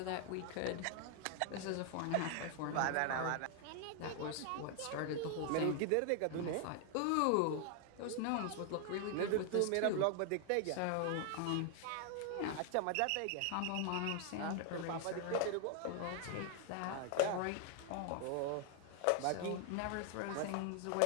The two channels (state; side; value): different; both; correlation 0.00